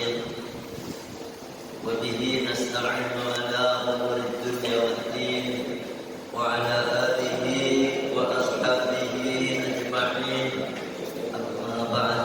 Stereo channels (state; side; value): identical; both; correlation 1.00